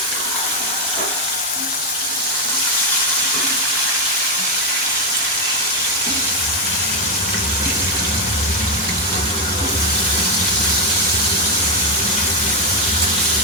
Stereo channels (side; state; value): both; normal; correlation 0.05